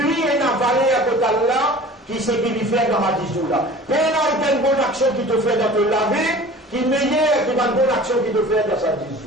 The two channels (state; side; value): normal; both; correlation 0.42